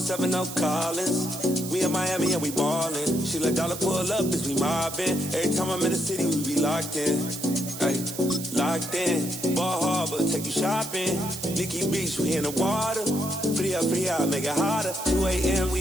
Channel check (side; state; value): right; noise; hiss, 10 dB below the sound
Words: Collins. We in Miami and we ballin'. She let dollar pull up as we mobbin'. Every time I'm in the city, we be locked in. Ay, locked in. Ball Harbor, take you shopping. Nikki Beach, we in the water. Free up, make it hotter. 2 a.m.,